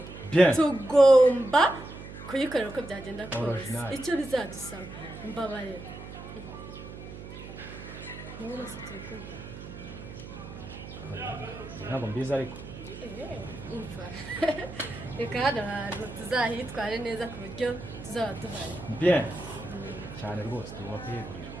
bien tugomba kuyikorera uko byagenda kose Original. icyo bizadusaba mbabarira mwese turikumva ntabwo mbizi ariko umva reka hano hantu tuzahitware neza ku buryo tuzaba duhari bien cyane rwose tugomba kuyegurira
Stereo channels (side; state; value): right; noise; hum, 12 dB below the sound